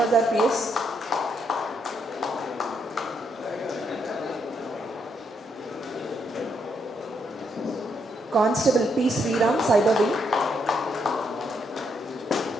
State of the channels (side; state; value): both; normal; correlation 0.76